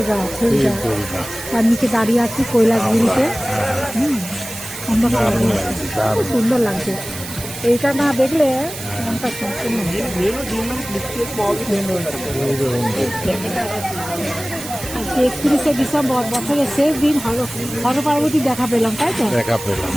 তার নিচে দাঁড়িয়ে আছি কৈলাসগিরিতে। খুব সুন্দর লাগছে। এইটা না দেখলে মনটা সম্পূর্ণ। 31শে ডিসেম্বর বছরের শেষ দিন হর পার্বতী দেখা পেলাম, তাই তো? দেখা পেলাম।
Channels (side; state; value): right; noise; hiss, 11 dB below the sound